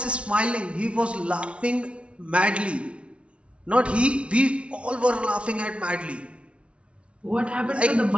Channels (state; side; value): late; left; 0.060 ms